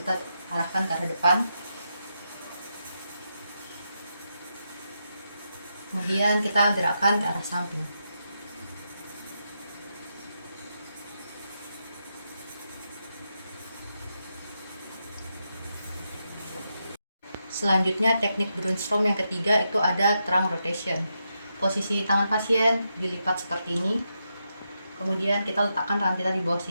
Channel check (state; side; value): inverted; both; correlation -0.84